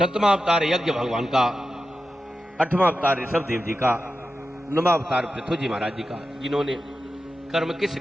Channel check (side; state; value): both; normal; correlation 0.91